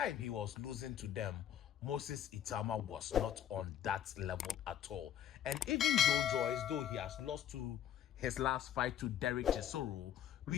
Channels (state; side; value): quieter; right; 10.2 dB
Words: he was losing to them, Moses Itauma was not on that level at all. And even Joe Joyce, though he has lost to his last fight to Derek Chisoro,